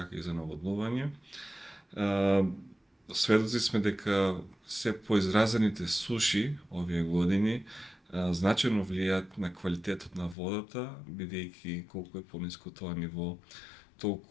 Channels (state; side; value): drops out; right; at 10.4 s